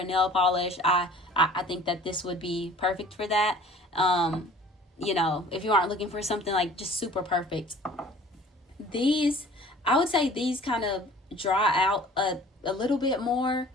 nail polish, I think that this would be perfect for that. If you aren't looking for something like just super perfect, I would say these kind of dry out a little bit more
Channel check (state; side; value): normal; both; correlation 0.49